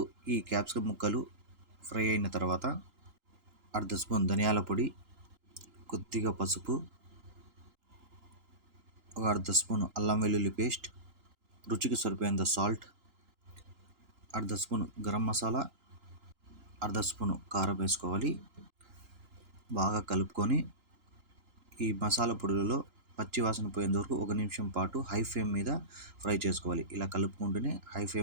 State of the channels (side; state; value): left; late; 3.8 ms